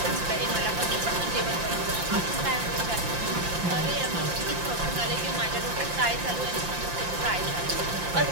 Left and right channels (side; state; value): left; late; 5.7 ms